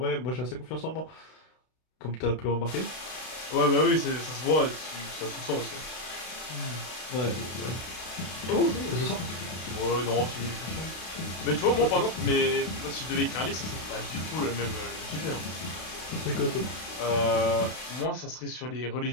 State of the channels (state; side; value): late; right; 32 ms